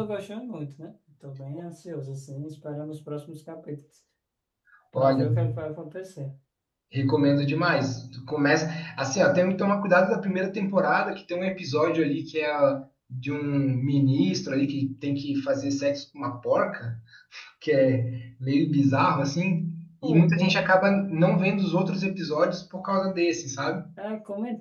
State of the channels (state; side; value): identical; both; correlation 1.00